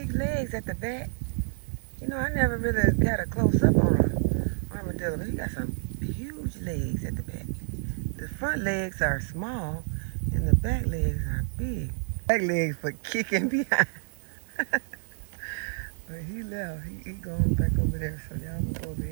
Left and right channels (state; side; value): silent; left; digital silence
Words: legs at the back. You know, I never really got a close-up on an armadillo, but he got some huge legs at the back. The front legs are small, and the back legs are big. Back legs for kicking behind. But he left. He going back over there, so y'all can go over